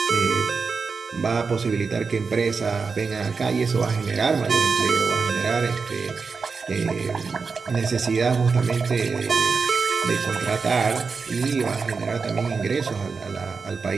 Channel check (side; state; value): left; quieter; 4.9 dB